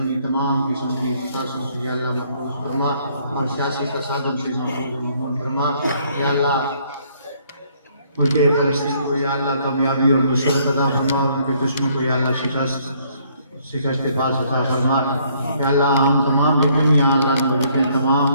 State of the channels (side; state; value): both; inverted; correlation -0.66